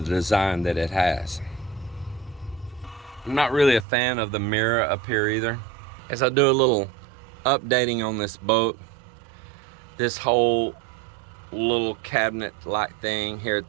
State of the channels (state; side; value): drops out; left; at 3.9 s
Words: the design that it has. I'm not really a fan of the mirror up here either. As I do a little updating on this boat, this whole little cabinet-like thing here at